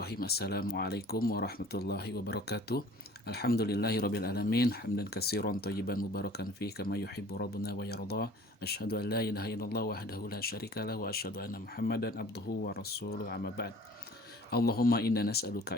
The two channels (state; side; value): normal; both; correlation 0.48